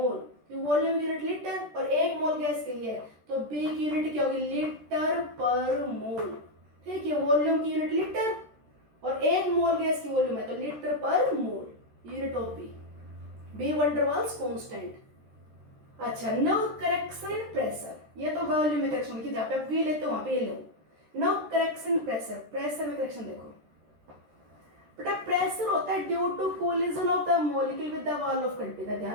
वॉल्यूम यूनिट लीटर और 1 मोल गैस के लिए, तो b की यूनिट क्या होगी लीटर पर मोल, ठीक है। वॉल्यूम की यूनिट लीटर और 1 मोल गैस की वॉल्यूम है तो लीटर पर मोल, यूनिट ऑफ b वंडरवाल्स कांस्टेंट। अच्छा, नाउ करेक्शन इन प्रेशर, ये तो वॉल्यूम में करेक्शन की, जहाँ पे आप v लेते हो वहां पे ये लो। नाउ करेक्शन प्रेशर, प्रेशर में करेक्शन देखो। बेटा प्रेशर होता है due to collision of the molecule with the wall of container,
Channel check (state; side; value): late; left; 13 ms